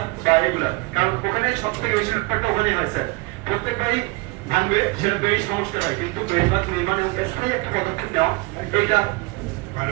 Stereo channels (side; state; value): left; quieter; 24.7 dB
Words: বা এগুলা, কারণ ওখানে সব থেকে বেশি ব্যাপারটা ওখানেই হয় স্যার, প্রত্যেকবারই ভাঙবে সেটা বেড়ি সমস্যা হয়, কিন্তু বেড়িবাঁধ নির্মাণ এবং স্থায়ী একটা পদক্ষেপ নেওয়া এইটা।